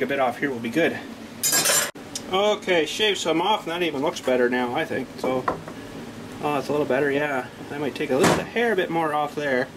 a bit off here, we'll be good. Okay, shave some off, and that even looks better now, I think. So, oh, it's a little better, yeah. I might take a little bit hair a bit more off there,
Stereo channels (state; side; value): identical; both; correlation 1.00